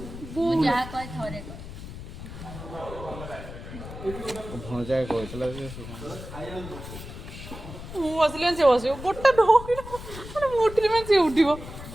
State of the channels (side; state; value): left; noise; rumble, 11 dB below the sound